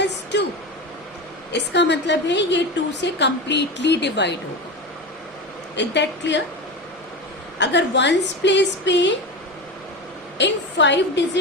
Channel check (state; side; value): normal; both; correlation 0.24